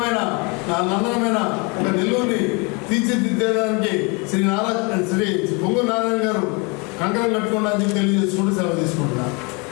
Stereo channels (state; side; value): quieter; right; 30.4 dB